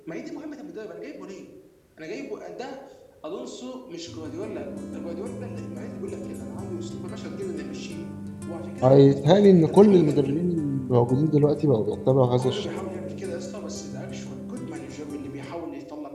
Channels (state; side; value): identical; both; correlation 1.00